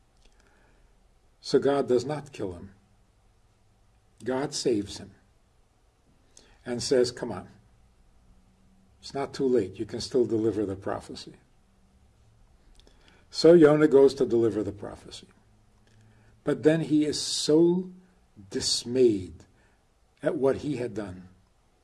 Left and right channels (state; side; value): identical; both; correlation 1.00